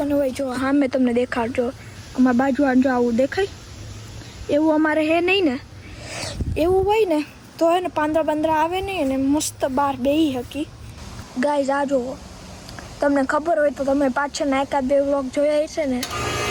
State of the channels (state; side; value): identical; both; correlation 1.00